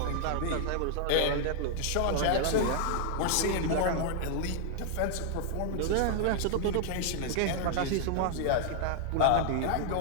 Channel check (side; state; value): both; different; correlation -0.01